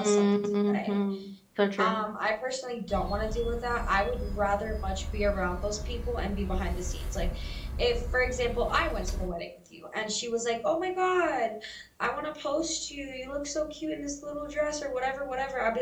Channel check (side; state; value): both; identical; correlation 1.00